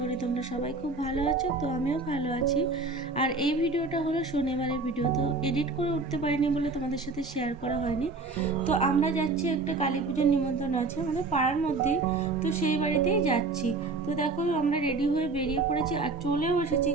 তোমরা সবাই খুব ভালো আছো। তো আমিও ভালো আছি। আর এই ভিডিওটা হলো শনিবারের ভিডিও, তো এডিট করে উঠতে পারিনি বলে তোমাদের সাথে শেয়ার করা হয়নি। তো আমরা যাচ্ছি, একটা কালী পুজোর নিমন্ত্রণ আছে আমাদের পাড়ার মধ্যেই, তো সেই বাড়িতেই যাচ্ছি। তো দেখো আমরা রেডি হয়ে বেরিয়ে পড়েছি আর চলেও এসেছি,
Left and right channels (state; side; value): quieter; left; 3.7 dB